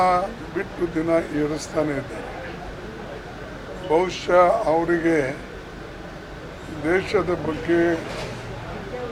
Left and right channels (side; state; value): both; identical; correlation 1.00